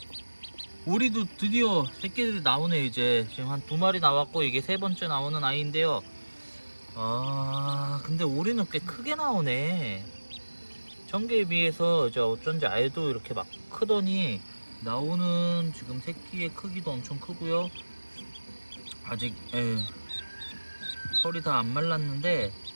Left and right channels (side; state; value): both; inverted; correlation -1.00